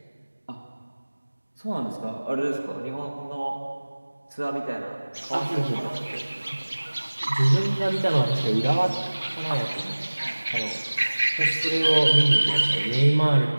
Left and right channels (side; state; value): both; inverted; correlation -1.00